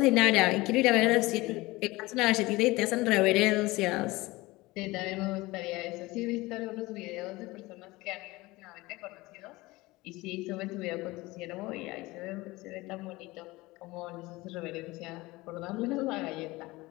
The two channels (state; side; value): quieter; right; 20.9 dB